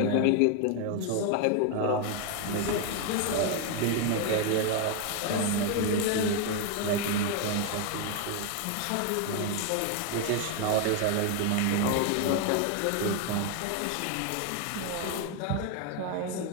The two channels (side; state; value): both; different; correlation 0.01